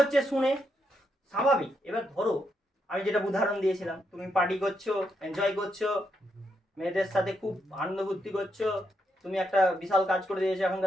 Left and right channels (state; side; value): normal; both; correlation 0.80